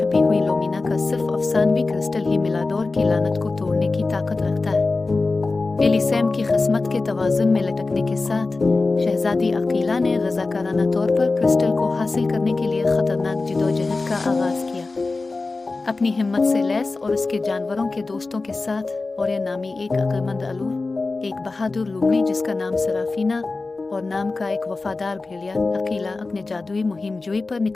हुई लोमीना का सिर्फ अफसानवी क्रिस्टल ही मिलाडोर की लानत को तोड़ने की ताकत रखता है। एलिसैम की किस्मत के तवाज़ुन में लटकने के साथ शहजादी अकीला ने रज़ाकाराना तौर पर क्रिस्टल को हासिल करने के लिए खतरनाक जिदोजहद का आगाज किया। अपनी हिम्मत से लैस और उसके जानवरों के दोस्तों के साथ और ये नामी एक अक्लमंद अलूर, एक बहादुर लूमड़ी जिसका नाम सराफीना और नाम का एक वफादार भेड़िया, अकीला अपने जादुई मुहिम जोई पर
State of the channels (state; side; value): quieter; right; 3.6 dB